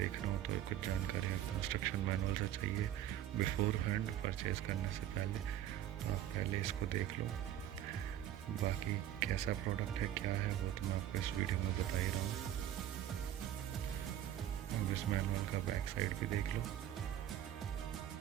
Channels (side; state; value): left; quieter; 11.6 dB